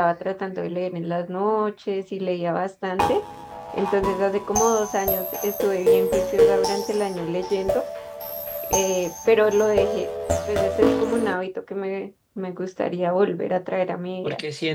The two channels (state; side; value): identical; both; correlation 1.00